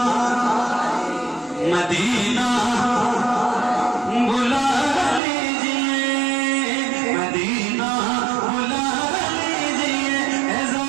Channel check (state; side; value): drops out; left; at 5.2 s